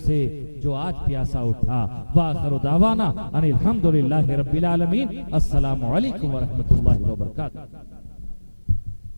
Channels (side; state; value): both; inverted; correlation -1.00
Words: जो आज प्यासा उठा। वाखिरु दावाना अनिल हम्दुलिल्लाहि रब्बिल आलमीन। अस्सलामु अलैकुम व रहमतुल्लाहि व बरकातुहू।